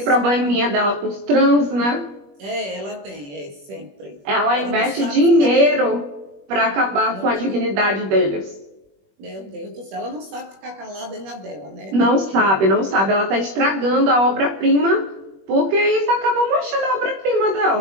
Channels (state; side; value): late; left; 21 ms